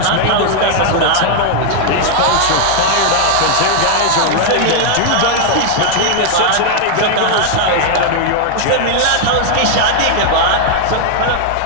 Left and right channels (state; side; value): different; both; correlation 0.00